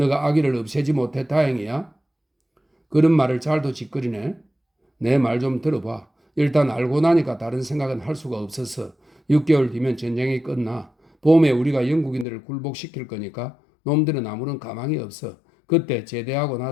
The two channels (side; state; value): right; drops out; at 12.2 s